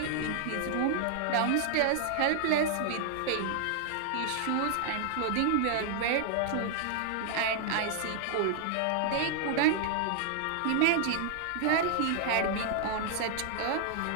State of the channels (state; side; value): different; both; correlation -0.01